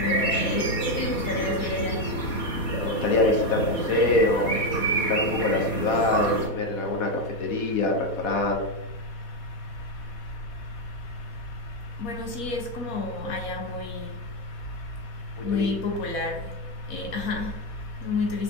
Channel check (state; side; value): late; right; 4.2 ms